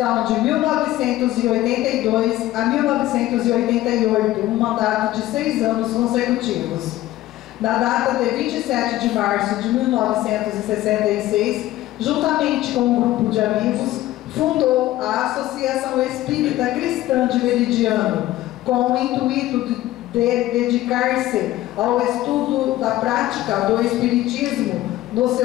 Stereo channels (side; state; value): right; quieter; 15.5 dB